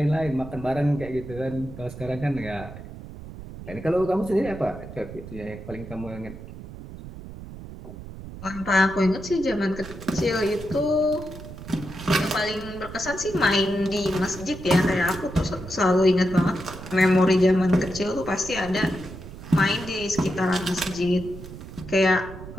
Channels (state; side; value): noise; right; rumble, 13 dB below the sound